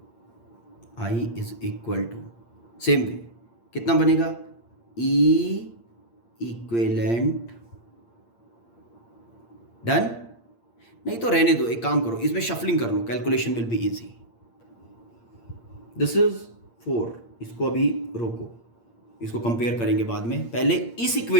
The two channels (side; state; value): right; late; 8.7 ms